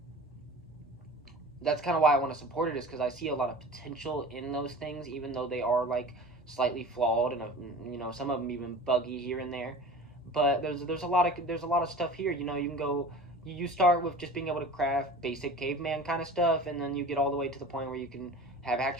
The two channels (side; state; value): both; normal; correlation 0.38